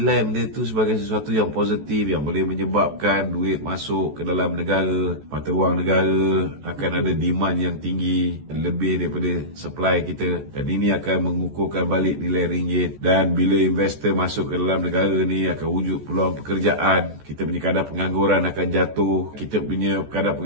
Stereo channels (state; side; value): late; left; 14 ms